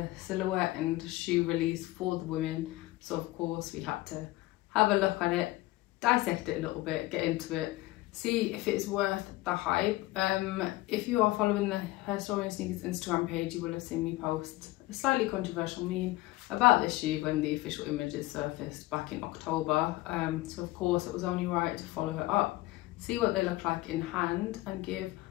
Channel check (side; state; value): right; quieter; 18.9 dB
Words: silhouette and shoe release for the women, so of course we had to have a look at it, dissect it a little bit, get into it, see if it's worth the hype. If you are following the Herstory and Sneakers Instagram page, you will have seen me post a slightly controversial meme about this shoe when the official images surfaced back in October. So of course it was only right to follow it up, see what they look like in hand, and give